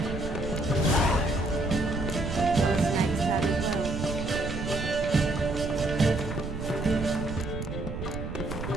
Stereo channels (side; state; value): right; noise; rumble, 6 dB below the sound